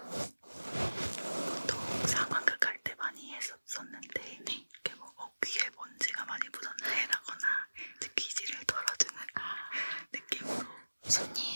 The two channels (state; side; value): inverted; both; correlation -1.00